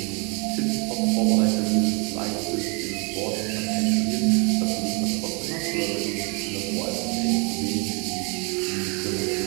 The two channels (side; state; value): left; quieter; 32.7 dB